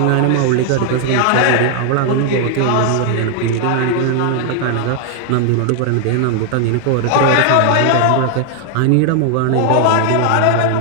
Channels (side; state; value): both; different; correlation 0.00